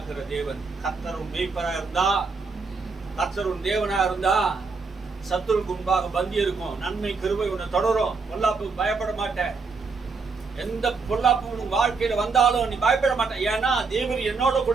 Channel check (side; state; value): left; quieter; 4.5 dB